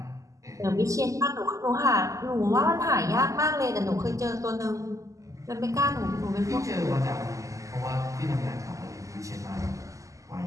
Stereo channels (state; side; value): late; left; 0.16 ms